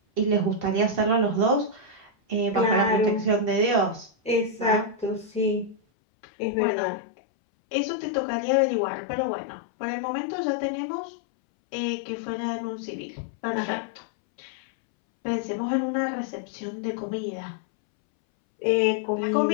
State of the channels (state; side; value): drops out; right; at 5.8 s